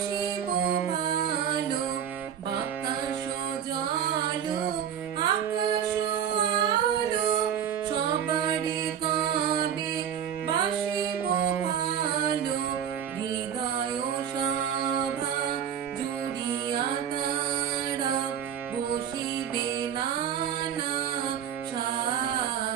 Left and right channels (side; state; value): left; quieter; 8.8 dB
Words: ভালো। বাতাস জল আকাশ আলো সবারই কবে বাসিব ভালো। হৃদয় সভা জুড়িয়া তারা বসিবে নানা